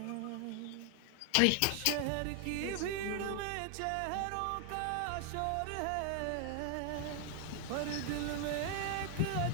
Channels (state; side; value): different; both; correlation 0.00